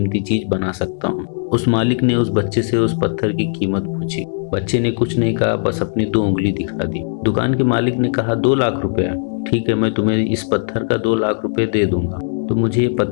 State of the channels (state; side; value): silent; right; digital silence